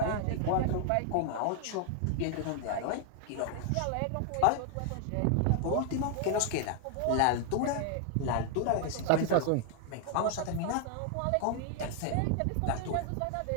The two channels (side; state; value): both; different; correlation 0.00